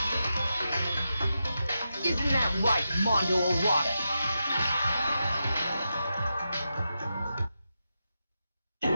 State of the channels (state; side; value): inverted; both; correlation -0.88